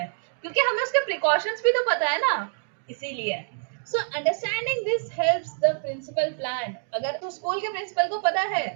क्योंकि हमें उसके प्रिकॉशंस भी तो पता है ना, इसीलिए. So understanding this helps the principal plan. अगर तो स्कूल के प्रिंसिपल को पता है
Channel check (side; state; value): left; silent; digital silence